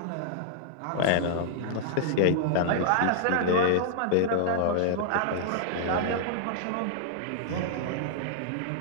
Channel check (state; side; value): different; both; correlation -0.01